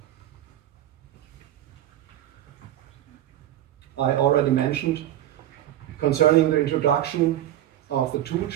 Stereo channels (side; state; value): left; quieter; 12.8 dB